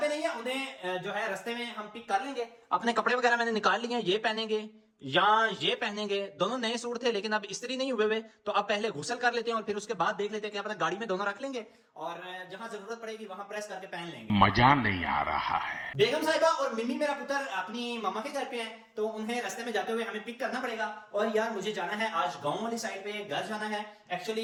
पे नहीं है, उन्हें जो है रास्ते में हम पिक कर लेंगे। अपने कपड़े वगैरह मैंने निकाल लिए हैं, ये पहनेंगे या ये पहनेंगे। दोनों नए सूट थे लेकिन अब इस्त्री नहीं हुए हुए, तो अब पहले गुसल कर लेते हैं और फिर उसके बाद देख लेते हैं कि अपना गाड़ी में दोनों रख लेंगे, और जहां जरूरत पड़ेगी वहां प्रेस करके पहन लेंगे। मजा नहीं आ रहा है। बेगम साहिबा और मिमी मेरा पुत्र अपनी मामा के घर पे हैं, तो उन्हें रास्ते में जाते हुए हमें पिक करना पड़ेगा। और यार मुझे जाना है आज गांव वाली साइड पे, घर जाना है।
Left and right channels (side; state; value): both; identical; correlation 1.00